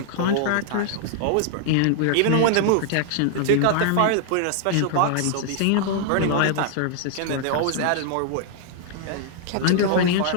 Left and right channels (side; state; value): both; different; correlation -0.01